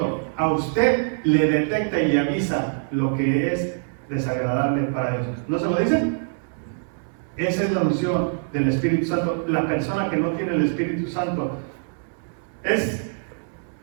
A usted le detecta y le avisa lo que es desagradable para Dios. ¿No se lo dice? Esa es la unción del Espíritu Santo. La persona que no tiene el Espíritu Santo es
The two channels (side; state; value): left; silent; 63 dB below the other